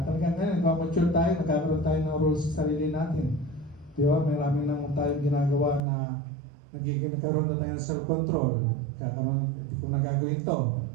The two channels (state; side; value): drops out; left; at 5.8 s